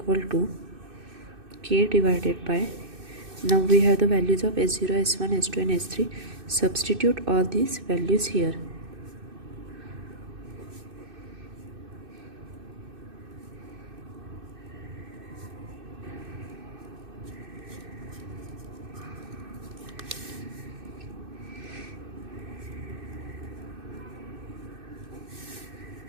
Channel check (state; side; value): late; left; 2.6 ms